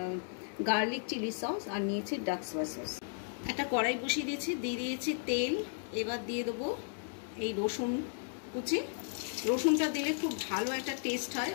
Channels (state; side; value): silent; right; digital silence